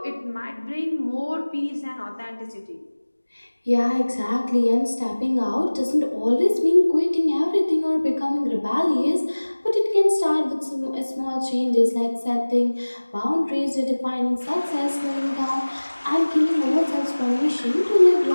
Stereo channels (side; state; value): both; inverted; correlation -1.00